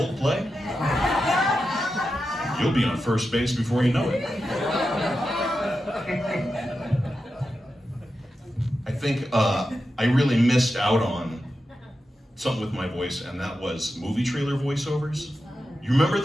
You'll be on first base before you know it. I think I really missed out on something with my voice, and that was movie trailer voiceovers. You remember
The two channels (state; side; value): normal; both; correlation 0.90